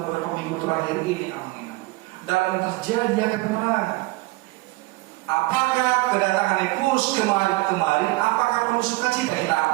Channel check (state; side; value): quieter; left; 21.8 dB